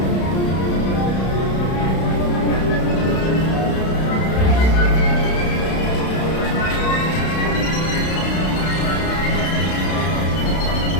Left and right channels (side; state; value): right; late; 32 ms